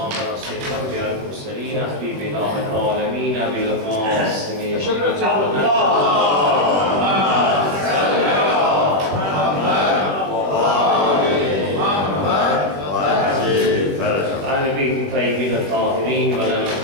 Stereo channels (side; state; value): left; late; 21 ms